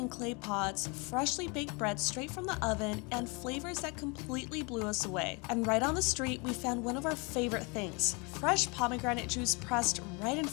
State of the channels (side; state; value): right; quieter; 30.0 dB